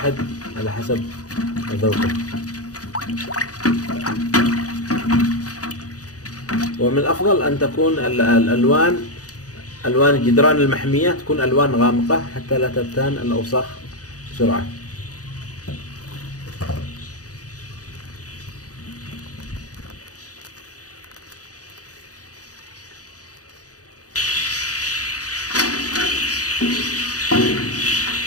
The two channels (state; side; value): late; right; 0.67 ms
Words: على حسب ذوقه. ومن الأفضل أن تكون ألوان جدران المحمية تكون ألوان غامقة حتى لا تبتان الأوساخ بسرعة.